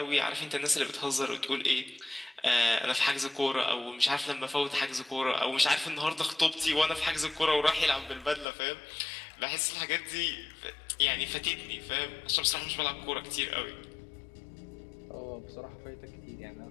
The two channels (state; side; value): drops out; right; at 8.5 s